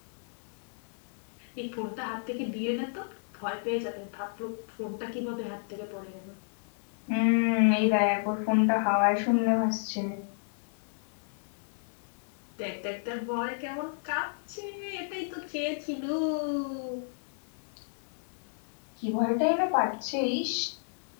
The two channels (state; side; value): silent; right; digital silence